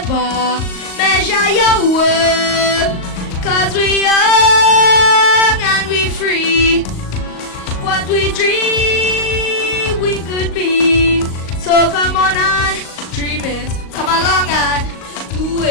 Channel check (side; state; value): right; late; 38 ms